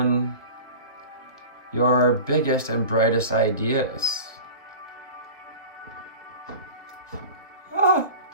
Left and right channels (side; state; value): both; inverted; correlation -0.36